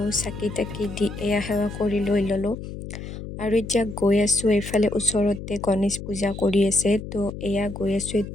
চাকি তাকি দি এয়া সেৱা কৰি লৈ ল'লোঁ। আৰু এতিয়া গৈ আছোঁ এইফালে ওচৰতে গণেশ পূজা কৰি আছে। তো এয়া গৈ আছোঁ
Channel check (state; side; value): noise; left; hum, 10 dB below the sound